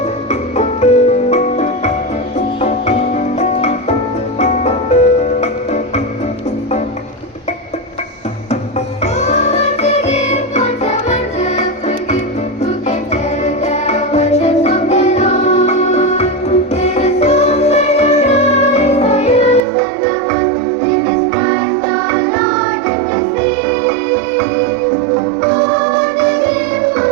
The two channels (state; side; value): drops out; left; at 19.7 s